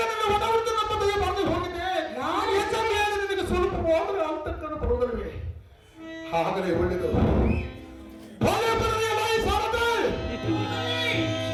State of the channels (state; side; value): identical; both; correlation 1.00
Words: ನನ್ನ ಒಡಹುಟ್ಟು ನಮ್ಮ ದಯ ಬಂದು ಹೋಗಿದೆ ನಾನು ಹೆಚ್ಚು ಮೇಲೆ ನಿನಗೆ ಸ್ವಲ್ಪ ಹೋದರೆ ಅಂತಕ್ಕನ್ನು ಬರುವುದಿಲ್ಲವೇ ಹಾಗಲೇ ಒಳ್ಳೆಯದು ಒಳ್ಳೆ ಬರಲಿ ಬಾಯಿ ಸಾರದೆ